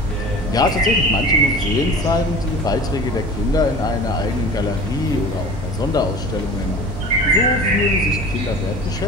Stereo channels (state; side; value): normal; both; correlation 0.39